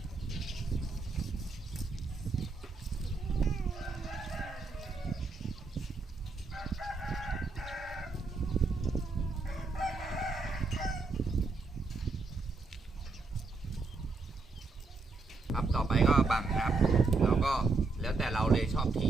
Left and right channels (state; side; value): quieter; left; 3.9 dB